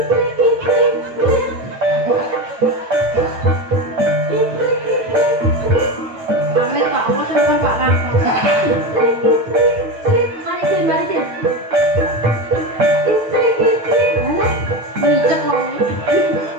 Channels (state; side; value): late; left; 9.0 ms